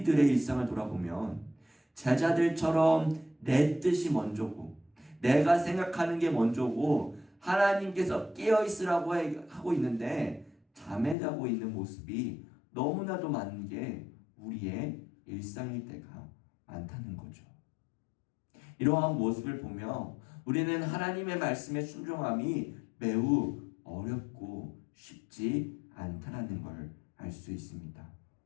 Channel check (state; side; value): drops out; right; at 11.2 s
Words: 일상을 돌아보면 제자들처럼 내 뜻이 먼저고 내가 생각하는 게 먼저고 하나님께서 깨어있으라고 하고 있는데 잠에 자고 있는 모습이 너무나도 많은 게 우리의 일상일 때가 많다는 거죠. 이러한 모습을 보며 우리는 하나님의 말씀에 순종함이 매우 어렵고 쉽지 않다는 걸 알 수 있습니다.